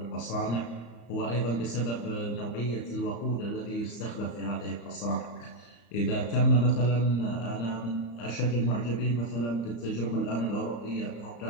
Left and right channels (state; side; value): late; right; 34 ms